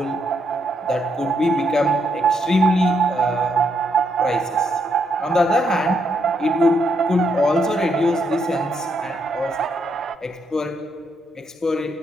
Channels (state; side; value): normal; both; correlation 0.76